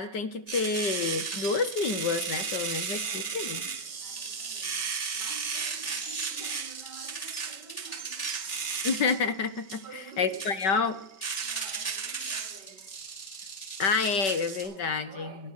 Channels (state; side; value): late; right; 5.2 ms